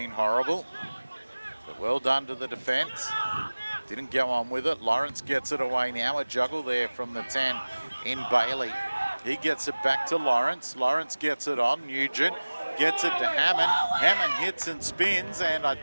horrible. But well done to the defence. Didn't go on with it. Lawrence gets it away now. A juggle there from the 10 in Bailey. He gets it back to Lawrence. Lawrence gets it on. Nugent gets it to Hammond. Hammond hits and spins, and I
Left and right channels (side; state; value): both; inverted; correlation -1.00